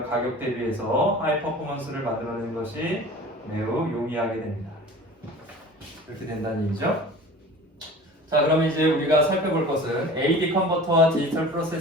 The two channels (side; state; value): both; normal; correlation 0.40